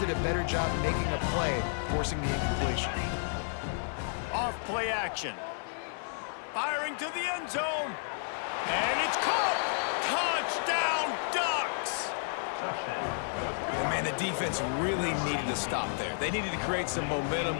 a better job making a play, forcing the incompletion. Off play action. Firing to the end zone. And it's caught. Touchdown, Ducks. And man, the defense really needed to stop there. They needed to create some momentum,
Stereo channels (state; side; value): silent; right; digital silence